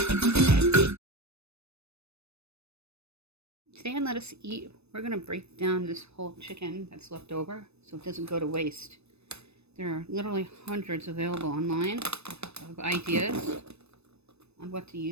Today on Let Us Eat, we're going to break down this whole chicken that's left over so it doesn't go to waste. There are literally hundreds available online of ideas on what to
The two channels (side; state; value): left; late; 0.80 ms